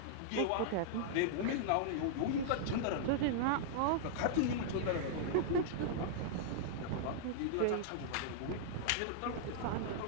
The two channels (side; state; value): both; different; correlation -0.01